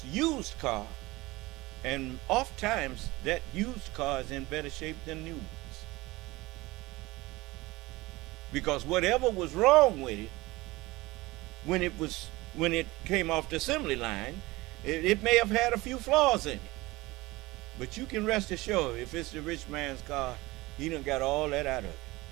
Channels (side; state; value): left; quieter; 20.9 dB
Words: used car, and oftentimes that used car is in better shape than new ones. Because whatever was wrong with it, when it came off the assembly line, it may have had a few flaws in it. But you can rest assured, if it's the rich man's car, he done got all that out of it.